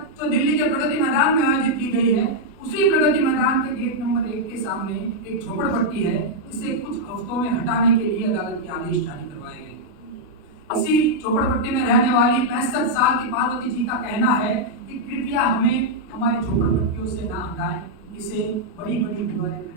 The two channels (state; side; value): late; right; 33 ms